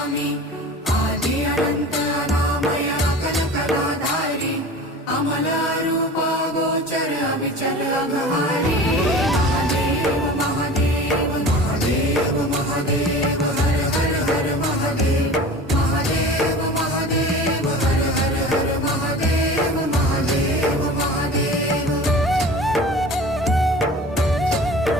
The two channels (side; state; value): both; normal; correlation 0.38